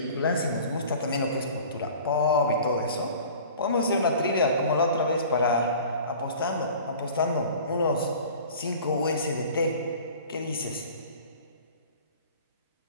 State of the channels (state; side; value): inverted; both; correlation -0.44